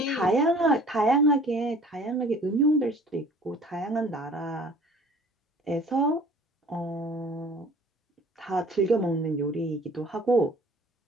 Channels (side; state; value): both; normal; correlation 0.50